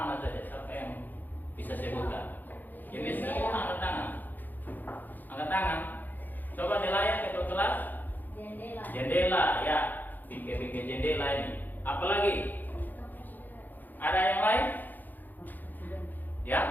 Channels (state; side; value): late; right; 0.086 ms